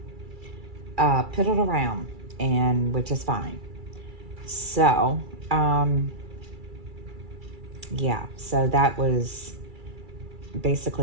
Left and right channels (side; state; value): left; late; 2.3 ms